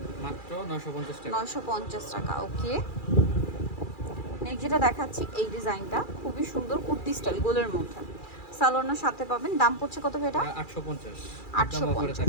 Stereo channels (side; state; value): right; late; 2.4 ms